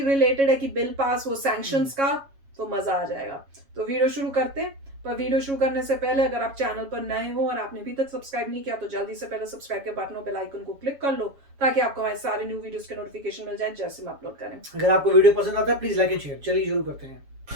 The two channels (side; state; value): left; late; 7.3 ms